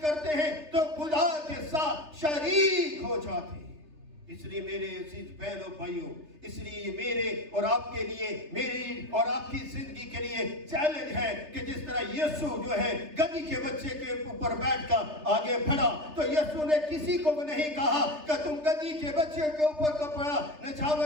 کرتے ہیں تو خدا کے ساتھ شریک ہو جاتے ہیں. اس لیے میرے عزیز بہنوں بھائیوں، اس لیے میرے اور آپ کے لیے، میری اور آپ کی زندگی کے لیے چیلنج ہے کہ جس طرح یسوع جو ہے گدھی کے بچے کے اوپر بیٹھ کر آگے بڑھا تو یسوع نے کسی کو نہیں کہا کہ تم گدھی کے بچے کے اوپر کپڑا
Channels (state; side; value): late; left; 3.3 ms